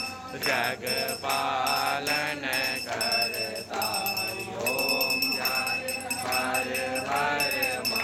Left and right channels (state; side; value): identical; both; correlation 1.00